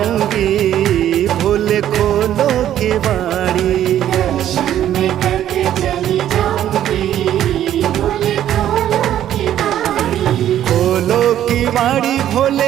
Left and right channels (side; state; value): left; quieter; 11.4 dB